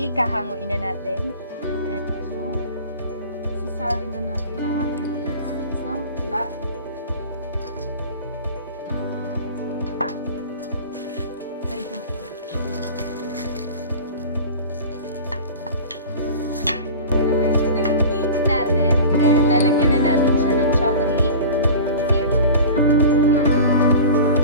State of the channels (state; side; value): inverted; both; correlation -0.37